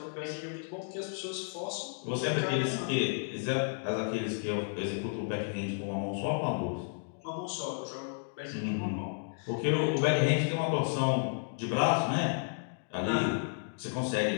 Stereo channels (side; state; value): right; silent; digital silence